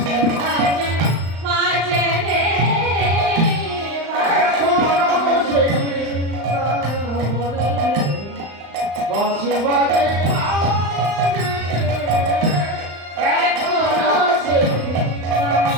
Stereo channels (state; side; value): late; left; 35 ms